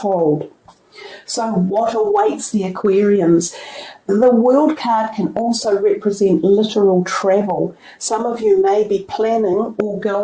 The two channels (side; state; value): both; identical; correlation 1.00